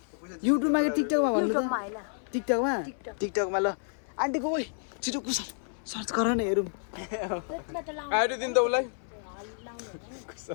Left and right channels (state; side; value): silent; right; 58 dB below the other